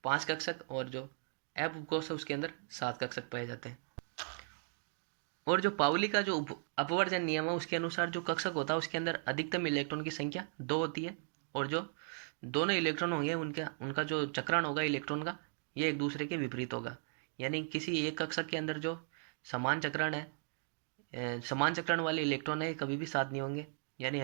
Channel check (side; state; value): left; silent; 53 dB below the other